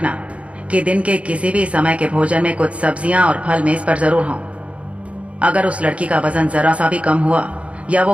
कि दिन के किसी भी समय के भोजन में कुछ सब्जियां और फल मेज पर जरूर हों। अगर उस लड़की का वजन जरा सा भी कम हुआ या वो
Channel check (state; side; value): late; left; 0.063 ms